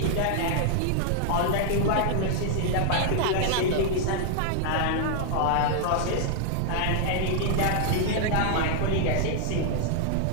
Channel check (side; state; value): both; different; correlation 0.00